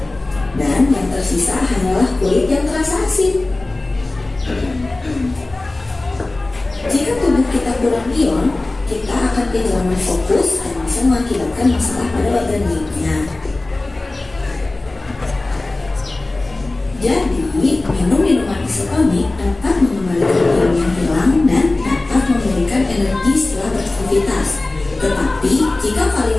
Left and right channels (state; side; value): quieter; right; 3.0 dB